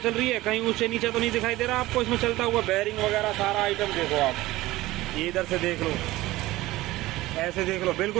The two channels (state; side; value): quieter; left; 17.8 dB